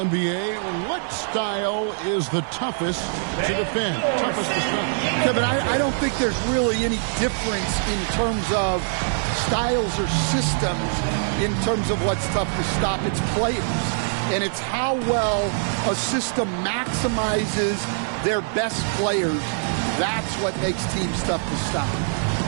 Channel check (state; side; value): silent; left; 55 dB below the other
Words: what style is the toughest to defend? Toughest to stop? Kevin, I don't think there's really any difference in terms of styles or systems in terms of what's tough to stop. It's players. And it's how well a system maximizes their best players. That's what makes teams tough to stop.